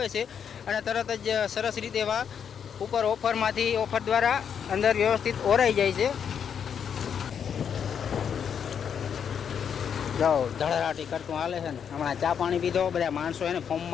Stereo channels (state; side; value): quieter; right; 7.7 dB